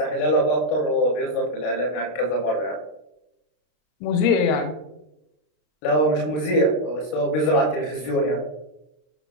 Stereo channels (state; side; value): late; right; 33 ms